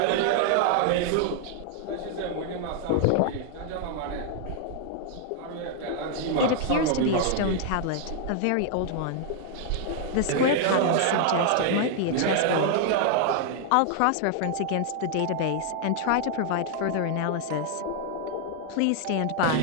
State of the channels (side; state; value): both; different; correlation 0.00